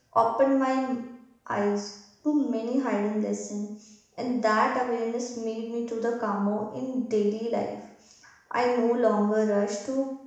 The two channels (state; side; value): identical; both; correlation 1.00